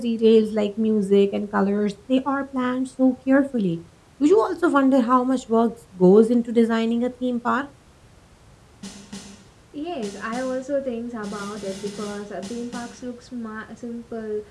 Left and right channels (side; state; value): both; identical; correlation 1.00